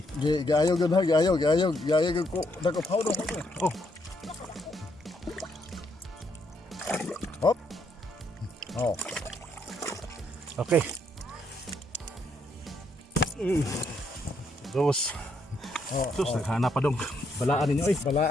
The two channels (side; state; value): both; normal; correlation 0.74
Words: Giayaw gud ha, giayaw gud ko. Dako powder ko. Oh, Hop. Oh. okay. Dos. Oh. Sus, naghanap pa dong. Balaan ninyo eh.